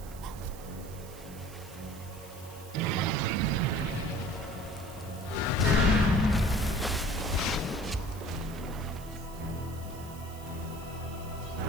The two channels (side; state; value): right; noise; hiss, 18 dB below the sound